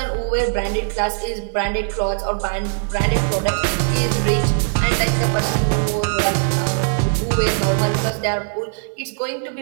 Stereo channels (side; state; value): left; silent; digital silence